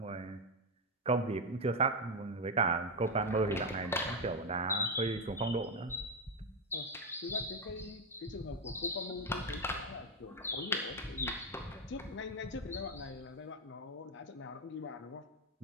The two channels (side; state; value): both; normal; correlation 0.07